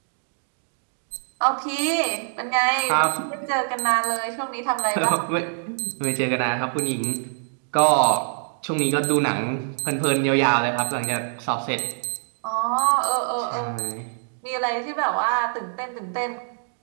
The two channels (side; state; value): left; silent; digital silence